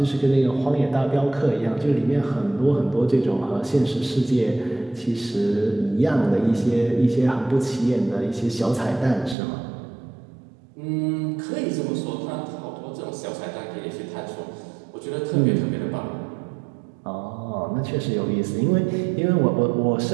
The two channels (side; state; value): left; drops out; at 9.3 s